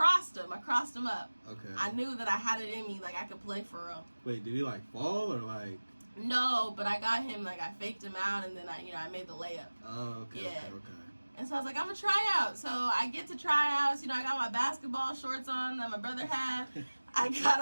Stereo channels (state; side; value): inverted; both; correlation -1.00